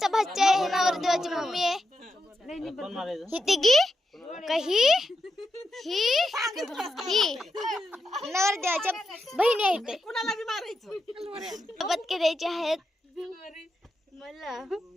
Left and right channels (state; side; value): normal; both; correlation 0.86